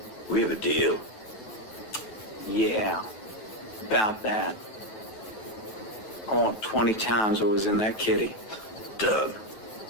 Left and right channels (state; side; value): late; right; 9.2 ms